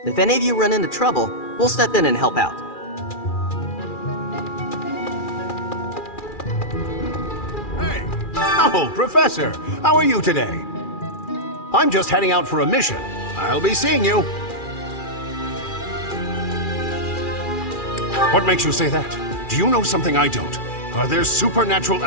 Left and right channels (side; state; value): right; late; 2.4 ms